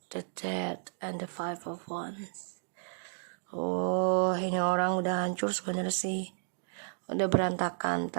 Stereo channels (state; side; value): silent; left; digital silence